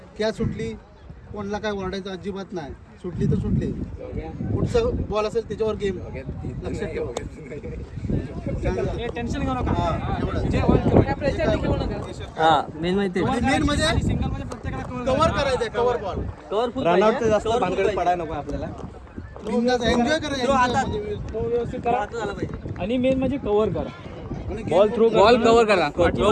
क्या सुटली कोणाला काय ओरडायचं अजिबात नाही. सुटली तर सुटली, पुढचा बॉल असेल त्याच्यावर गेम लक्ष ठेवा. टेन्शन घेऊ नका. मेन माहिती मेन म्हणजे कव्हर करायचं, कव्हर बॉल. रनआउट जास्त भानगड पडायला नको आपल्याला. एन्जॉय करायचं आणि मेन म्हणजे कव्हर करा. बॉल थ्रो बॉल कव्हर करा. थ्रो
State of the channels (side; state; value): both; identical; correlation 1.00